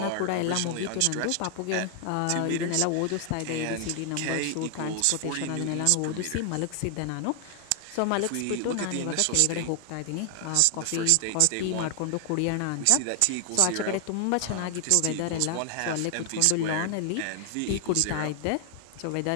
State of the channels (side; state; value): both; different; correlation 0.00